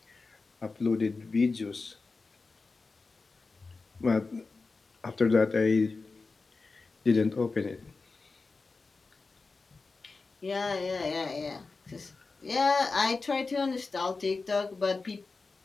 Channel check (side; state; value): right; quieter; 4.0 dB